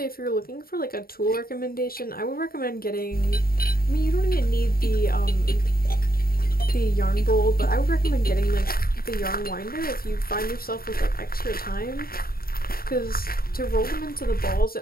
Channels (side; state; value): right; late; 0.43 ms